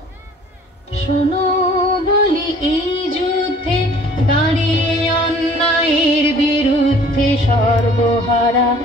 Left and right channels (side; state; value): both; normal; correlation 0.52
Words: শোনো বলি, এই যুদ্ধে দাঁড়িয়ে অন্যায়ের বিরুদ্ধে সর্বহারা